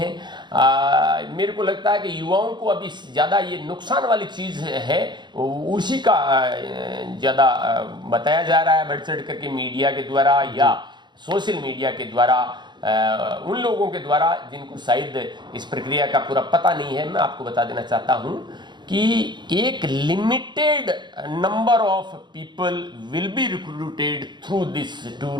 मेरे को लगता है कि युवाओं को अभी ज्यादा ये नुकसान वाली चीज है उसी का ज्यादा बताया जा रहा है, बढ़ चढ़ करके मीडिया के द्वारा या सोशल मीडिया के द्वारा, उन लोगों के द्वारा जिनको शायद इस प्रक्रिया का पूरा पता नहीं है। मैं आपको बता देना चाहता हूं कि एक limited number of people will be recruited through this tour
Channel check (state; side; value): late; left; 0.22 ms